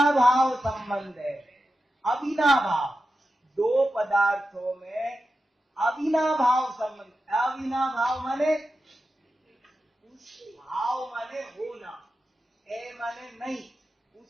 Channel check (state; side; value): normal; both; correlation 0.91